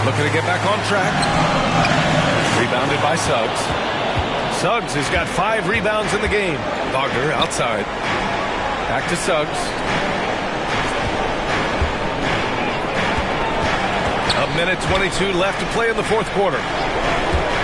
Looking to get back on track. Rebounded by Suggs. Suggs has got 5 rebounds in the game. Wagner outside. Back to Suggs. A minute 22 left to play in the fourth quarter.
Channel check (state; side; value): identical; both; correlation 1.00